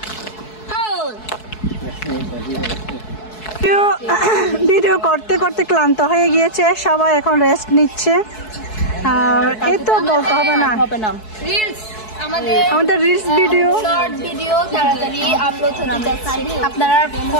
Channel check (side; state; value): right; late; 4.6 ms